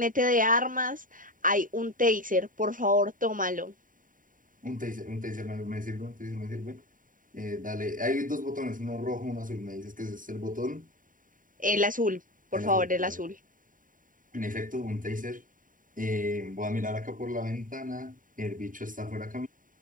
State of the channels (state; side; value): late; left; 0.39 ms